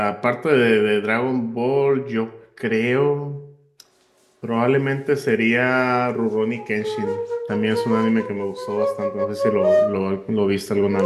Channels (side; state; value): both; identical; correlation 1.00